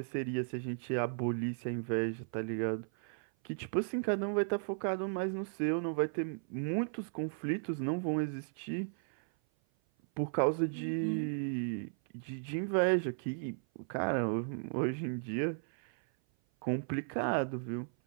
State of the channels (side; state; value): left; silent; 54 dB below the other